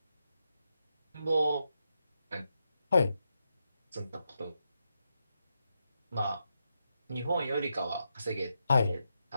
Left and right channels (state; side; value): inverted; both; correlation -0.85